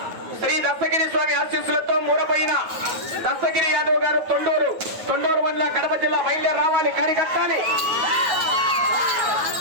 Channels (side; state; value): left; late; 9.4 ms